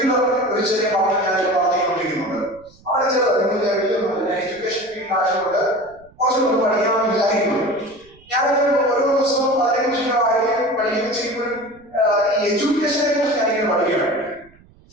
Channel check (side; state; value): right; noise; rumble, 28 dB below the sound